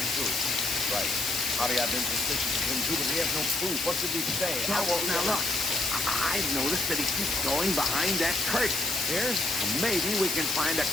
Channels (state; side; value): noise; left; hiss, 4 dB below the sound